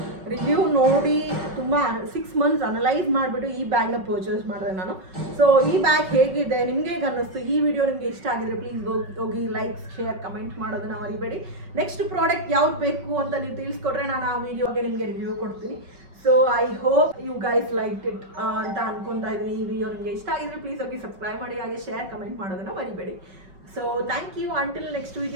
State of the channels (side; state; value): left; late; 5.3 ms